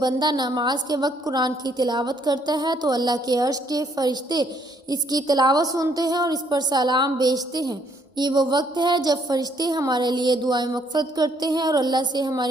نماز کے وقت قرآن کی تلاوت کرتا ہے تو اللہ کے عرش کے فرشتے اس کی تلاوت سنتے ہیں اور اس پر سلام بھیجتے ہیں۔ یہ وہ وقت ہے جب فرشتے ہمارے لیے دعائیں مغفرت کرتے ہیں اور اللہ سے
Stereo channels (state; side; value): normal; both; correlation 0.68